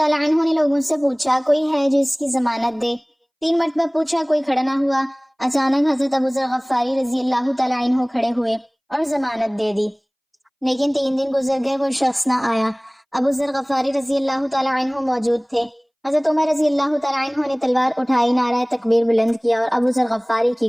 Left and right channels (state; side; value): identical; both; correlation 1.00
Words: عنہ نے لوگوں سے پوچھا کوئی ہے جو اس کی ضمانت دے۔ 3 مرتبہ پوچھا، کوئی کھڑا نہ ہوا۔ اچانک حضرت ابو ذر غفاری رضی اللہ تعالیٰ عنہ کھڑے ہوئے اور ضمانت دے دی، لیکن 3 دن گزر گئے، وہ شخص نہ آیا۔ ابو ذر غفاری رضی اللہ تعالیٰ عنہ موجود تھے۔ حضرت عمر رضی اللہ تعالیٰ عنہ نے تلوار اٹھائی، نعرہ تکبیر بلند کیا اور ابو ذر غفاری کی